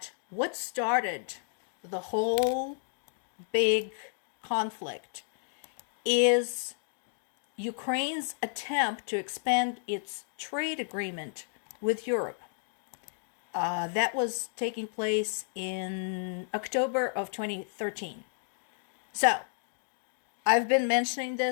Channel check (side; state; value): right; silent; digital silence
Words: what started the whole big conflict is Ukraine's attempt to expand its trade agreement with Europe. That was taking place in October of 2013. So, I've been mentioning